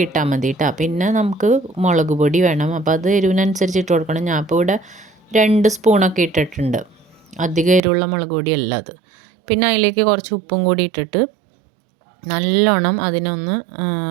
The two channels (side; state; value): left; drops out; at 7.8 s